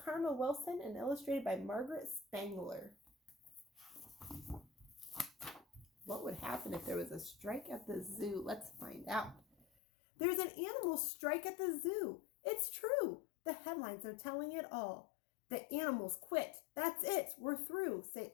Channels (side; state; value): right; drops out; at 9.7 s